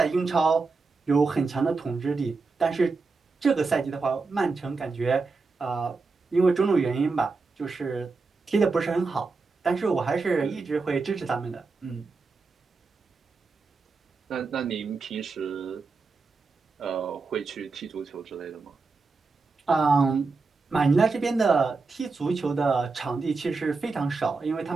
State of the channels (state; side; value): quieter; left; 4.2 dB